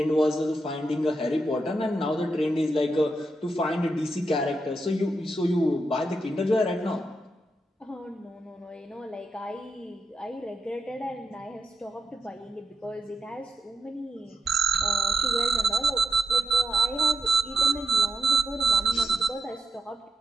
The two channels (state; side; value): normal; both; correlation 0.83